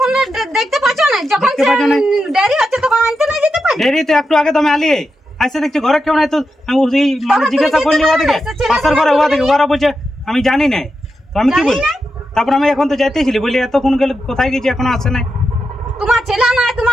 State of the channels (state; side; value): normal; both; correlation 0.88